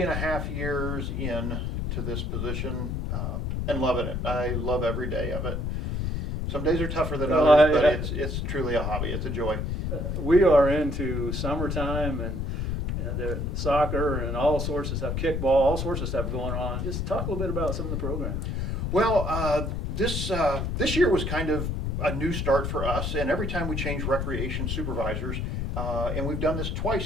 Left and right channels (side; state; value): left; noise; rumble, 2 dB below the sound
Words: years in to this position and loving it. I love every day of it. Some days are tougher than others, but it's truly a hobby. It's a joy. We are into summertime and the soccer and all sorts of stuff, kickball, all sorts of stuff going on. Just talk a little bit about some of the programs. Well, this year was kind of a new start for us, and every time we change recreation supervisors, and we've done this